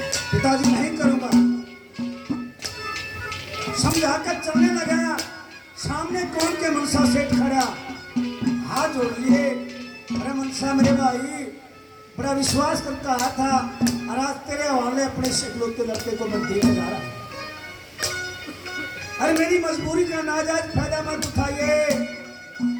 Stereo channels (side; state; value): both; identical; correlation 1.00